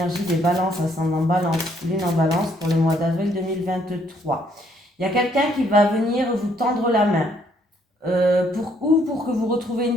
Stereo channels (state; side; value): normal; both; correlation 0.68